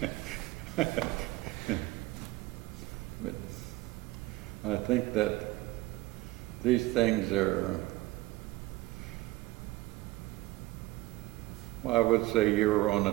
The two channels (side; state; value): left; quieter; 18.6 dB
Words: mad. But I think that these things are, I would say you're on a